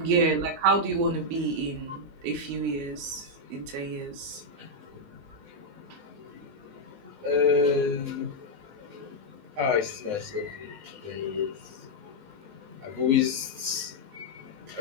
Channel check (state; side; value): late; left; 19 ms